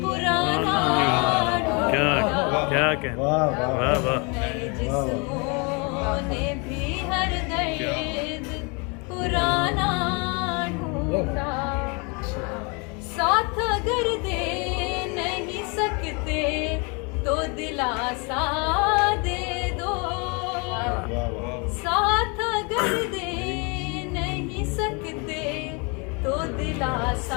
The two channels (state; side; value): quieter; right; 31.7 dB